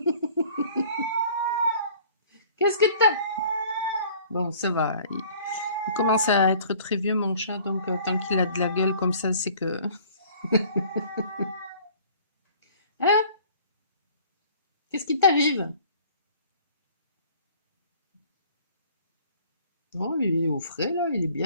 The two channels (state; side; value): inverted; both; correlation -0.52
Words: Qu'est-ce que tu Bon, ça va, il commence à être très vieux mon chat, donc tant qu'il a de la gueule comme ça, c'est que hein? Qu'est-ce qui t'arrive? Oh, il est au frais là, il est